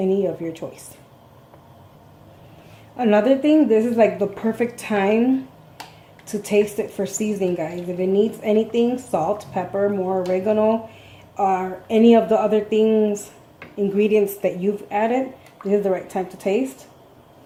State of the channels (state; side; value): identical; both; correlation 1.00